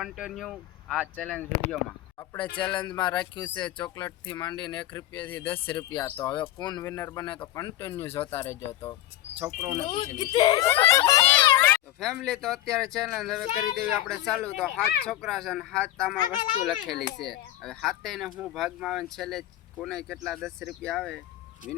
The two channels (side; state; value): right; quieter; 14.1 dB